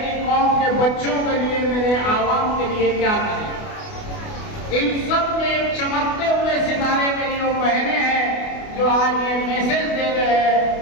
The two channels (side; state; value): right; late; 28 ms